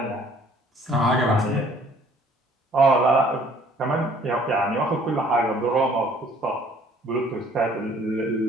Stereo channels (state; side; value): normal; both; correlation 0.57